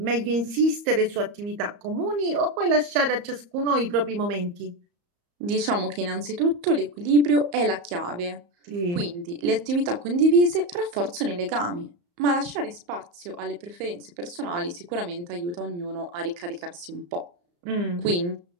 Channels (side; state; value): left; late; 34 ms